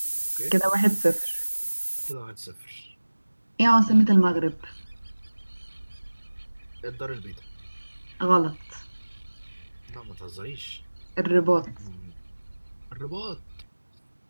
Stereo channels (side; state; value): both; inverted; correlation -1.00